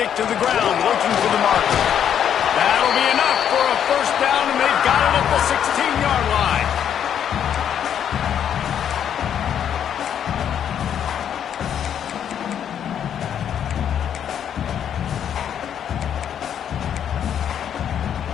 to the ground looking for the marker. That'll be enough for a first down, and they've got it at the 16-yard line.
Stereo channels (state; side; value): quieter; right; 9.1 dB